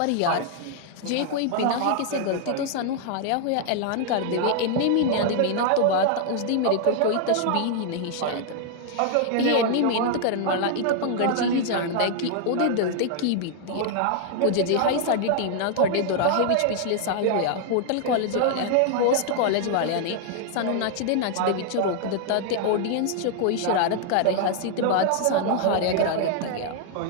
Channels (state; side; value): different; both; correlation 0.00